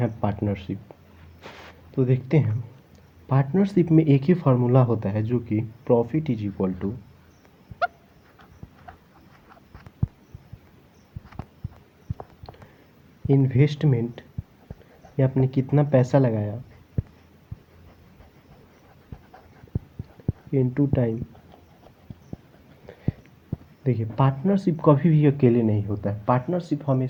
पार्टनरशिप। तो देखते हैं, पार्टनरशिप में एक ही फार्मूला होता है जो कि profit is equal to investment, या आपने कितना पैसा लगाया, इनटू टाइम। देखिए, पार्टनरशिप कभी भी अकेले नहीं होता है। पार्टनरशिप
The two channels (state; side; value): identical; both; correlation 1.00